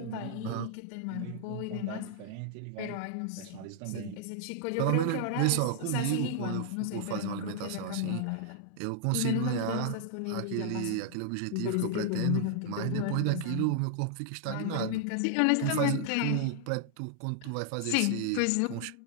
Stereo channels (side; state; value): both; different; correlation -0.01